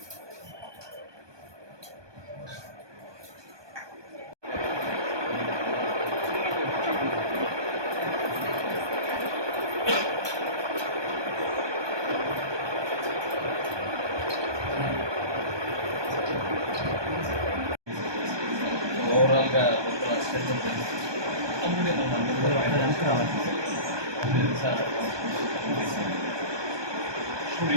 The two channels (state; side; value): late; left; 1.2 ms